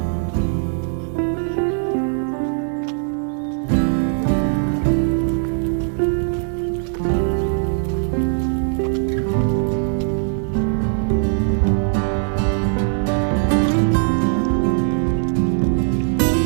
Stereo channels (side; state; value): left; silent; digital silence